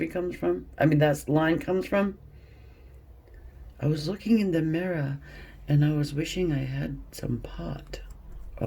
comes from? I mean, that line comes from? I was looking in the mirror and I was wishing I had some pot. A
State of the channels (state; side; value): identical; both; correlation 1.00